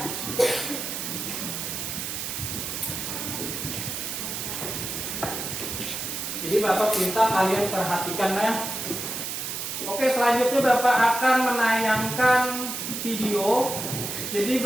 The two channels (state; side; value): noise; right; hiss, 4 dB below the sound